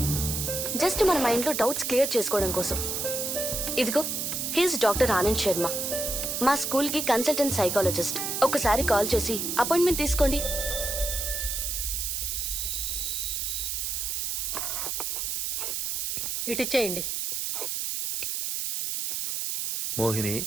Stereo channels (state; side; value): noise; right; hiss, 1 dB below the sound